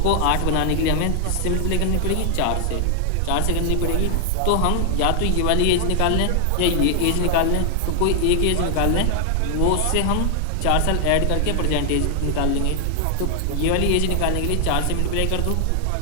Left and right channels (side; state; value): both; different; correlation 0.00